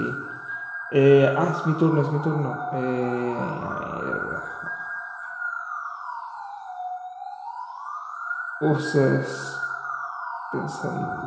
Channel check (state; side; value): identical; both; correlation 1.00